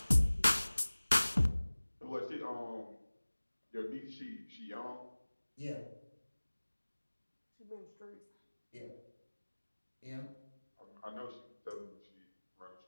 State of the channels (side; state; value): both; inverted; correlation -1.00